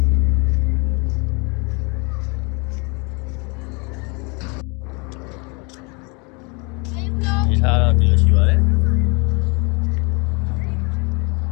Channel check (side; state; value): right; quieter; 31.0 dB